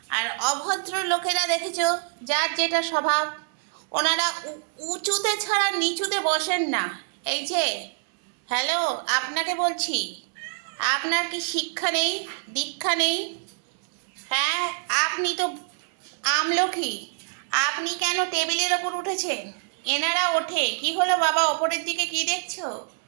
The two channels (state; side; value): silent; left; 61 dB below the other